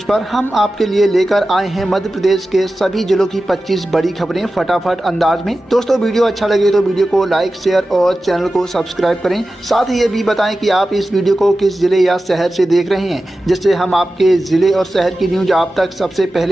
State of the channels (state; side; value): normal; both; correlation 0.94